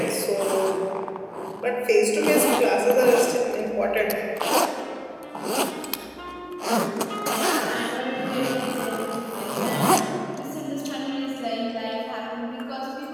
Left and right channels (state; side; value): identical; both; correlation 1.00